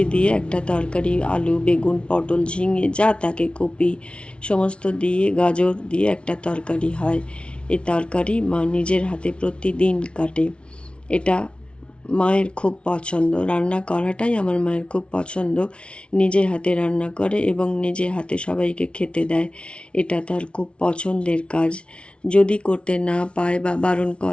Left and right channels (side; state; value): right; late; 0.059 ms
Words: দিয়ে একটা তরকারি, আলু, বেগুন, পটল, ঝিঙে যা থাকে, কপি সমস্ত দিয়ে, গাজর দিয়ে একটা তরকারি হয়। এই তরকারি মা নিজের হাতে প্রতিদিন কাটে। এটা মায়ের খুব পছন্দ। রান্না করাটাই আমার মায়ের খুব পছন্দ। নিজে হাতে রান্না করে এবং নিজে হাতে সবাইকে খেতে দেয়। এটা তার খুব পছন্দের কাজ। যদি করতে না পায় বা বারণ